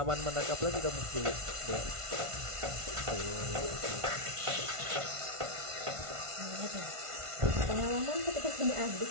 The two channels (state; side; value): late; left; 1.5 ms